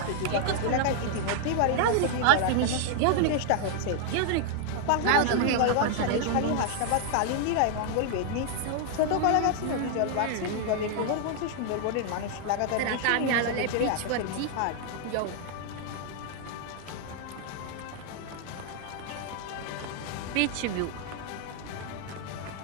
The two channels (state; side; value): different; both; correlation 0.00